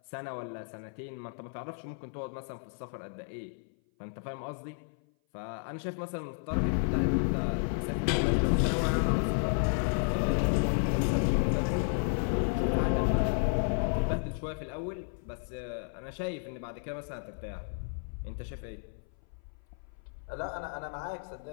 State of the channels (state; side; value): silent; right; 56 dB below the other